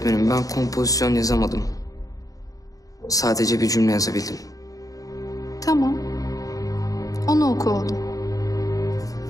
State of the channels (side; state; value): right; late; 0.17 ms